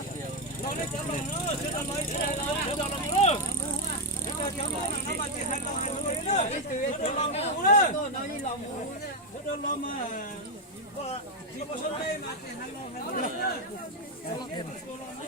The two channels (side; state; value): both; normal; correlation 0.04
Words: Nó lấy cho nó, cho nó lấy cho nó nữa.